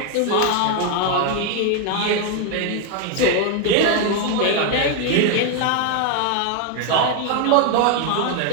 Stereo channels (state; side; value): different; both; correlation 0.01